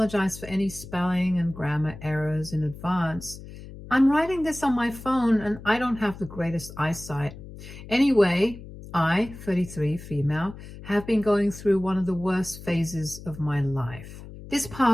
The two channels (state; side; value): noise; left; hum, 14 dB below the sound